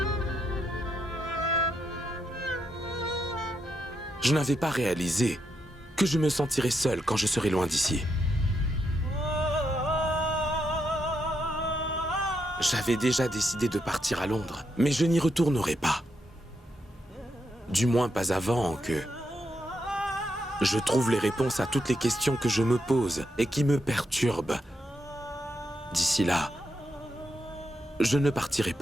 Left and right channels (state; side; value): normal; both; correlation 0.81